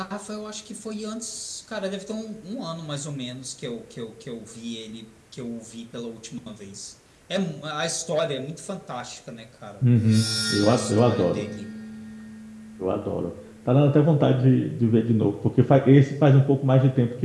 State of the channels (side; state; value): both; identical; correlation 1.00